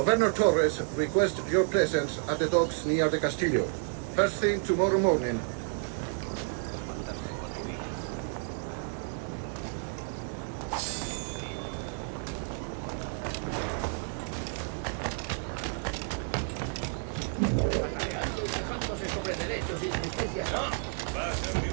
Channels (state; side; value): silent; left; 57 dB below the other